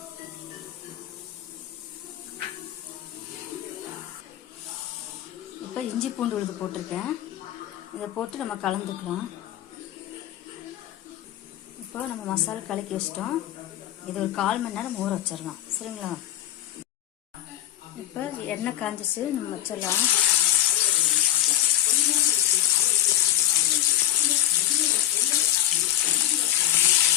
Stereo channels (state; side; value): quieter; right; 12.8 dB